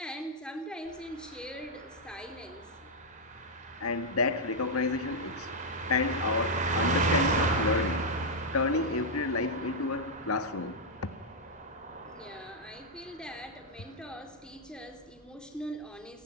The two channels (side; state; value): both; normal; correlation -0.03